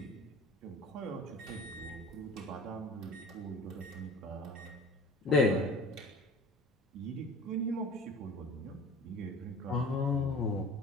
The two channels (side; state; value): both; normal; correlation 0.41